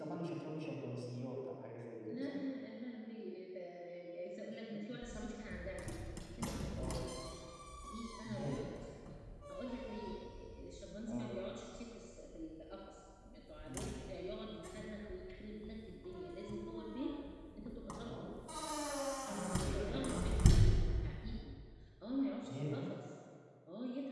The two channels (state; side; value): identical; both; correlation 1.00